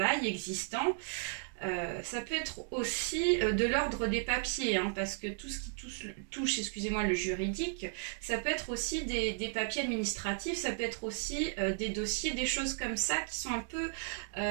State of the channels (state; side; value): silent; left; digital silence